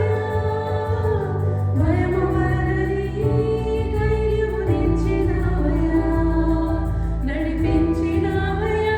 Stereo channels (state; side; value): identical; both; correlation 1.00